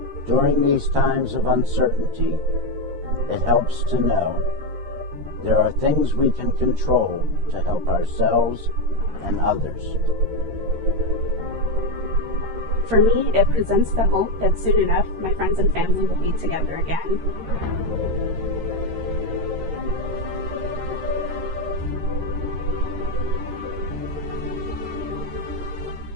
During these times of uncertainty, it helps to know there are things we can control to help ourselves and others. For me, it presents the hope that soon enough my friends and family will be together again.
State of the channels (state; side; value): late; left; 13 ms